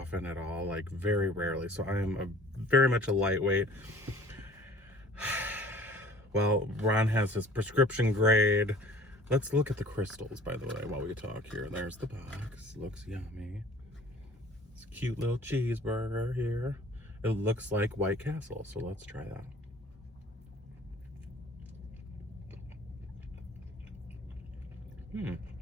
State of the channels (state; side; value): normal; both; correlation 0.50